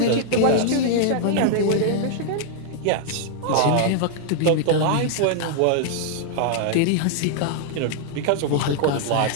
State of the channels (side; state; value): both; different; correlation -0.01